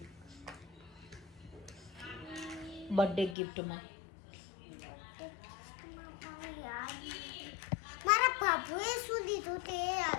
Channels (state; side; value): drops out; right; at 3.4 s